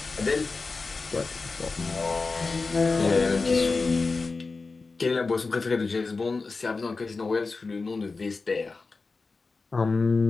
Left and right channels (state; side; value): quieter; right; 4.1 dB